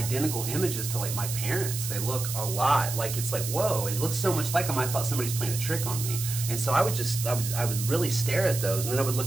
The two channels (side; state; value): right; noise; hiss, 6 dB below the sound